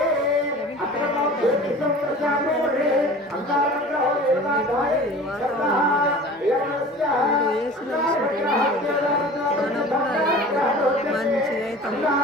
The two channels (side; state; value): both; normal; correlation 0.41